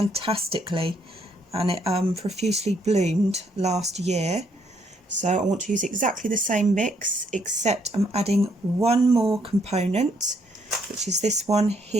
and it profusely bloomed last year. So I want to use exactly the same mix, except I'm adding one more component, which is this one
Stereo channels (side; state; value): both; normal; correlation 0.71